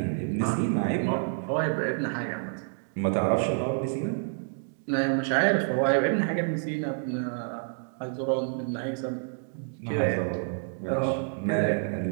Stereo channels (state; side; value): silent; left; digital silence